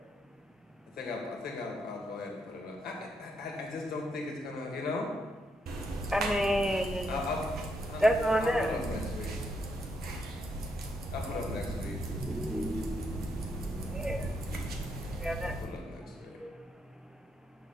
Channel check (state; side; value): normal; both; correlation 0.78